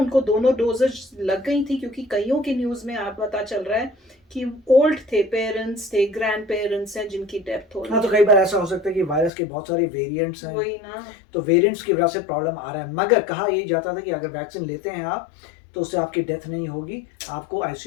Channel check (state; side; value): drops out; right; at 9.3 s